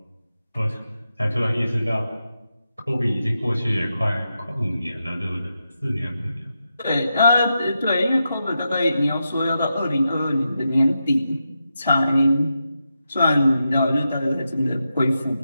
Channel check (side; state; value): both; inverted; correlation -0.87